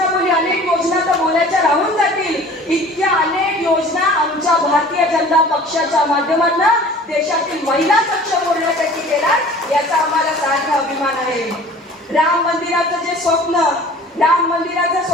बोलली, अनेक योजना तर बोलायच्या राहून जातील. इतक्या अनेक योजना आमच्या भारतीय जनता पक्षाच्या माध्यमातून देशातील महिला सक्षम होण्यासाठी केला, याचा आम्हाला सार्थ अभिमान आहे. राम मंदिराचं जे स्वप्न, राम मंदिराचं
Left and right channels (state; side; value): normal; both; correlation 0.46